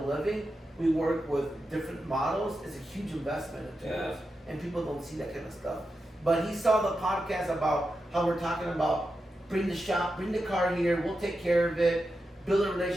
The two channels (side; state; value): both; normal; correlation 0.89